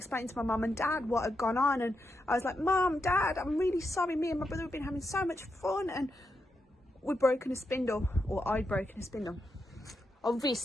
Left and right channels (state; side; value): normal; both; correlation 0.85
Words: to my mum and dad what had gone on, and I was like, Mum, Dad, I'm really sorry, me and my brother have been having so much fun and we'd broken a spindle, or I'd broken a spindle.